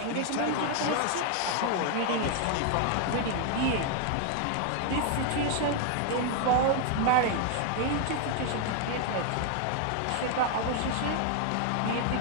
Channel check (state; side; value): different; both; correlation 0.00